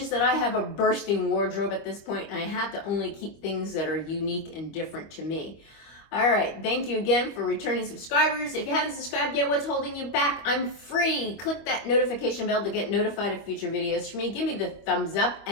that I have a bursting wardrobe at this point, and I have to only keep things that are unique and different to me. All right, thank you again for returning subscribers. If you haven't subscribed yet, what's holding you back? I'm free. Click that notification bell to get notified of future videos from me. Give me the thumbs up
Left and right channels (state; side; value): late; right; 25 ms